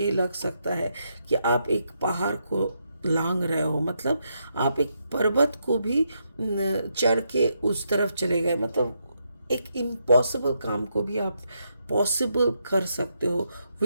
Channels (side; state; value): both; inverted; correlation -0.80